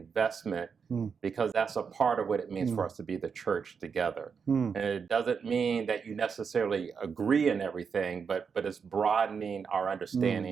because that's a part of what it means for us to be the church together. And it doesn't mean that you necessarily agree in everything, but it's broadening our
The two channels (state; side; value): quieter; left; 6.1 dB